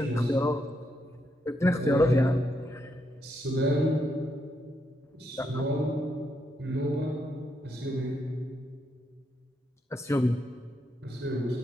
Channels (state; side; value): normal; both; correlation 0.79